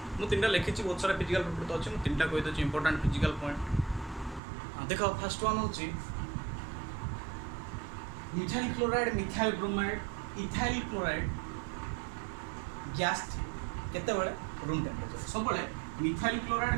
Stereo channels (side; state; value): left; drops out; at 4.4 s